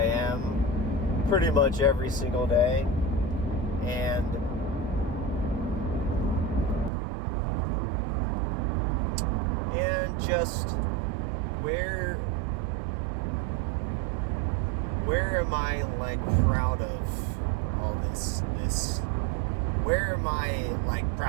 am pretty much every single day. And just where am I, like, proud of all this? Where am I, like,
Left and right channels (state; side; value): drops out; left; at 6.9 s